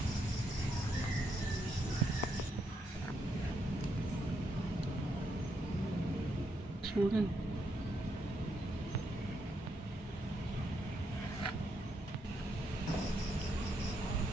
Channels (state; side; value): normal; both; correlation 0.79